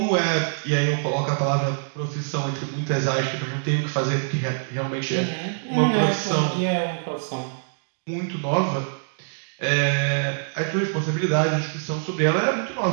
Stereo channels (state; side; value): silent; left; digital silence